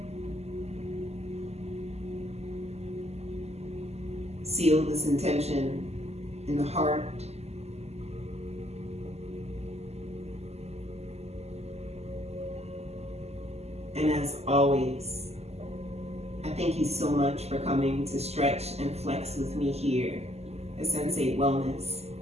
Seal this intention in the heart. And as always, I thank you so much for coming to stretch and flex with me here at Sensate Wellness.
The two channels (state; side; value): late; left; 0.30 ms